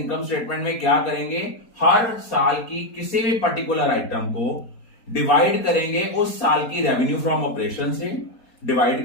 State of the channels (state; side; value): late; right; 4.2 ms